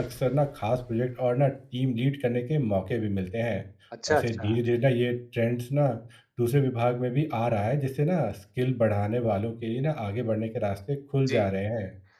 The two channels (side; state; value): both; identical; correlation 1.00